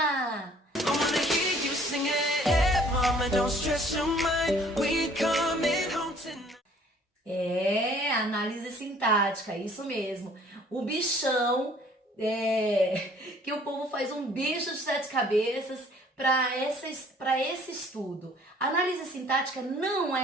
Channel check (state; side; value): normal; both; correlation 0.56